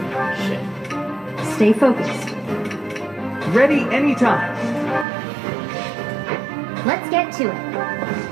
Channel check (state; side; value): drops out; left; at 5.1 s